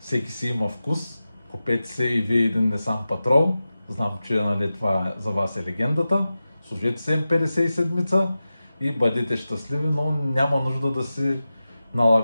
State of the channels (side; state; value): both; inverted; correlation -0.94